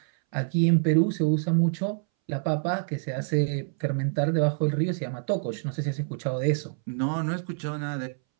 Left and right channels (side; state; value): left; silent; 60 dB below the other